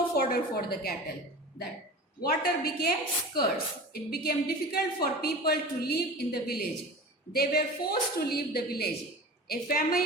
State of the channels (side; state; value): both; normal; correlation 0.34